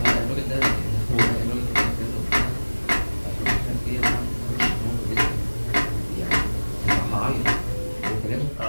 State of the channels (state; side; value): inverted; both; correlation -1.00